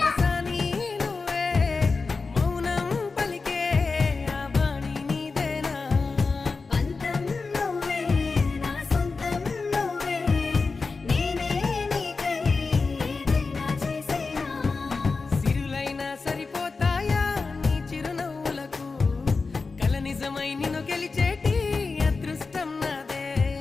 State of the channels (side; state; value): right; quieter; 4.3 dB